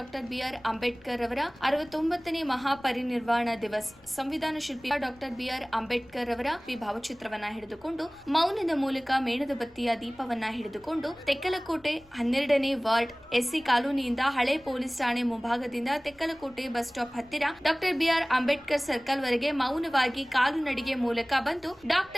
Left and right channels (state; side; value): noise; left; rumble, 29 dB below the sound